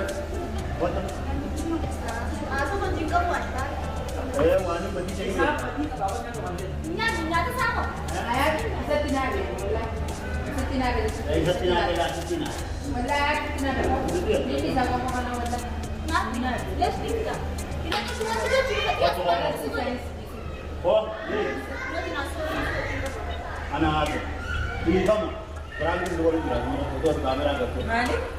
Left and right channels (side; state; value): both; identical; correlation 1.00